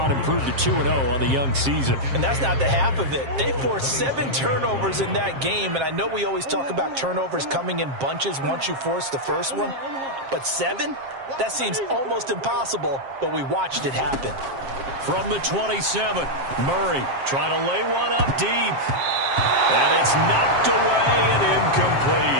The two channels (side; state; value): left; late; 7.5 ms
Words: improve to 2-0 on the young season. And that's not the half of it. They forced 7 turnovers in that game, and I know we always talk about turnovers coming in bunches once you force the first one, but 7? That seems almost impossible, but we watched it happen. From the 27, Murray trying to lay one up deep. And it's knocked away and